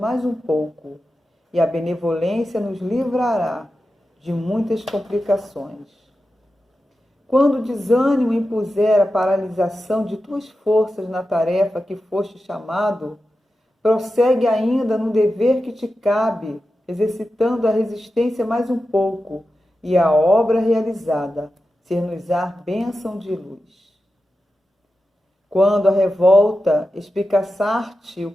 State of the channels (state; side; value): normal; both; correlation 0.91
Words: um pouco, e a benevolência nos livrará de muitas complicações. Quando o desânimo impuser a paralisação de tuas forças na tarefa que foste chamado, prossegue ainda no dever que te cabe, exercitando a resistência mais um pouco, e a obra realizada ser-nos-á bênção de luz. Quando a revolta espicaçar-te o